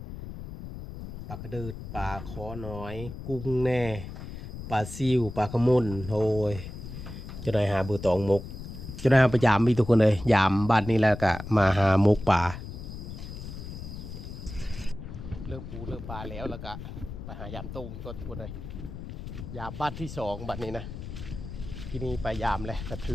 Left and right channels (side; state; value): left; noise; rumble, 10 dB below the sound